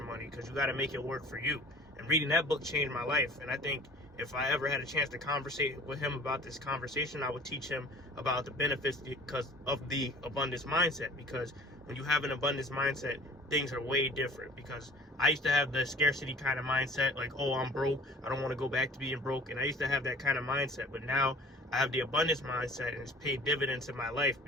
money, because you got to make it work for you. And reading that book changed my life. And I think if I ever had a chance to conversate with him about this conversation, I would teach him about the benefits because of the abundance mindset. Because when you have an abundance mindset, things are way different. Because I used to have the scarcity kind of mindset, like, oh, I'm broke, I don't want to go back to being broke. And I used to have that kind of mindset. But now I have the abundance mindset, and it's paid dividends in my life,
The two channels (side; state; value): both; normal; correlation 0.46